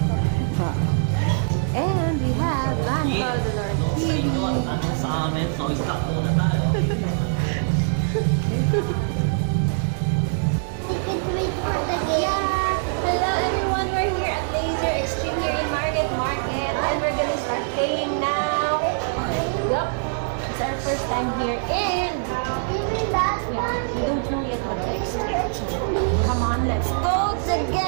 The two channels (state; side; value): silent; left; 63 dB below the other